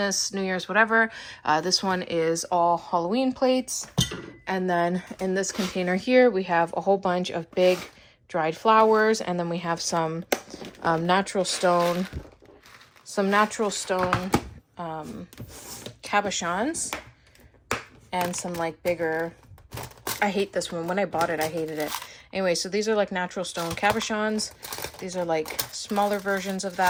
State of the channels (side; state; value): both; identical; correlation 1.00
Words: New Year's, whatever. This one is all Halloween plates. And then in this container here, we have a whole bunch of big dried flowers, and then we have some natural stone cabochons, and some like bigger, I hate this one. When I bought it, I hated it. Anyway, so these are like natural stone cabochons. These are like smaller versions of